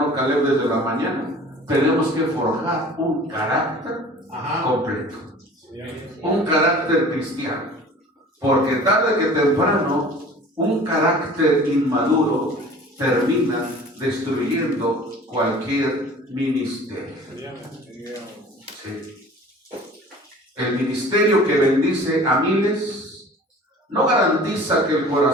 Caleb desde la mañana, tenemos que forjar un carácter completo, un carácter cristiano, porque tarde que temprano un carácter inmaduro termina destruyendo cualquier ministerio. Sí. El ministerio que bendice a miles no garantiza que el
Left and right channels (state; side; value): normal; both; correlation 0.45